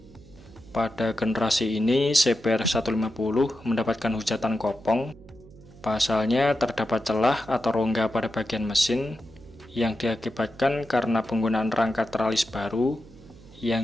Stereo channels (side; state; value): right; noise; hum, 22 dB below the sound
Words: Pada generasi ini, CBR 150 mendapatkan hujatan kopong. Pasalnya terdapat celah atau rongga pada bagian mesin yang diakibatkan karena penggunaan rangka teralis baru